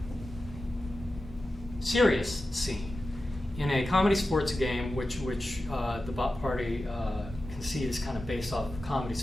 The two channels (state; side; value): normal; both; correlation 0.93